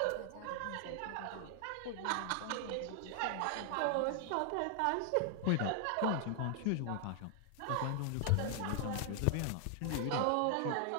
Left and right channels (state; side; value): different; both; correlation 0.00